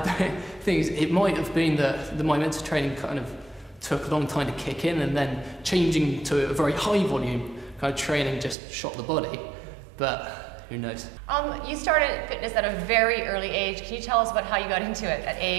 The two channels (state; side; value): drops out; left; at 8.6 s